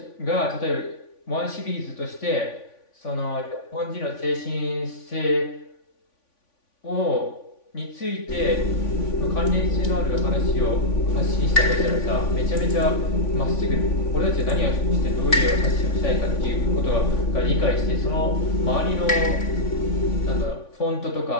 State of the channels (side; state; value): right; late; 3.5 ms